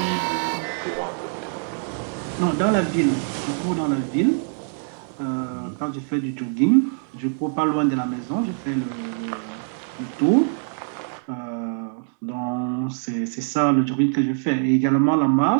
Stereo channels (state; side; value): silent; left; 63 dB below the other